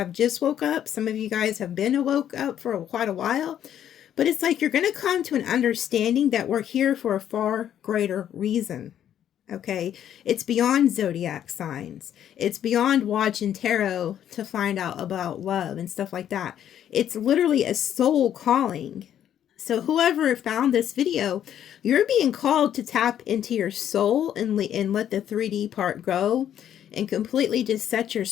just woke up, some of you guys have been woke up for quite a while, but it's like you're going to come to an understanding that we're here for a far greater reason. Okay, it's beyond zodiac signs. It's beyond watching tarot to find out about love and stuff like that. It's literally a soul calling. So whoever found this video, you're being called to tap into your soul and let the 3D part go and completely just set your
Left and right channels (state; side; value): quieter; right; 10.2 dB